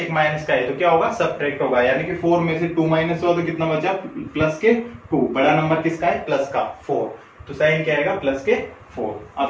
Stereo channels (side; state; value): both; identical; correlation 1.00